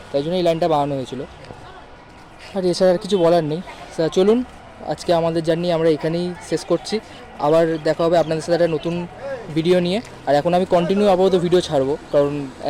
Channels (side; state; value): both; identical; correlation 1.00